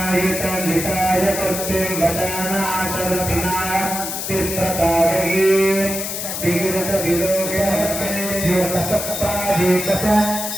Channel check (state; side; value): noise; left; hiss, 4 dB below the sound